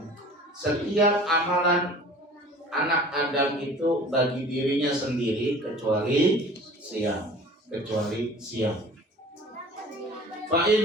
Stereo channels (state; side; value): normal; both; correlation 0.44